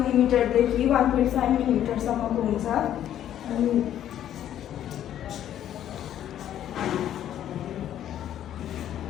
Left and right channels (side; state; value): right; quieter; 11.0 dB